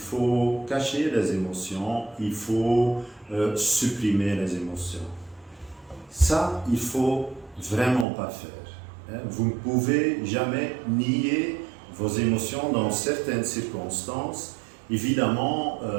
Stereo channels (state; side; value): drops out; left; at 8.1 s